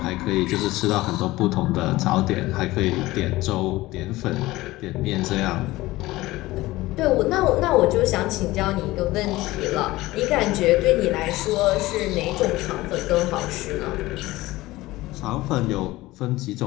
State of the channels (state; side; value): quieter; right; 18.6 dB